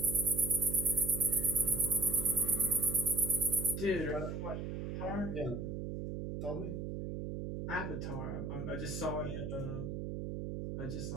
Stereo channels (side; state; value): right; noise; hum, 4 dB below the sound